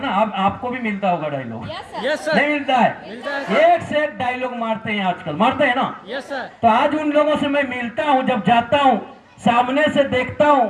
अब आपको भी मिलता होगा डायलॉग? Yes sir. नहीं मिलता है? मिलता है। एक से एक डायलॉग मारते हैं आजकल, मारते हैं ना? Yes sir. तो आज उन लोगों से मैं मिलता हूं, जब जाता हूं सामने से देखता हूं,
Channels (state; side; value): identical; both; correlation 1.00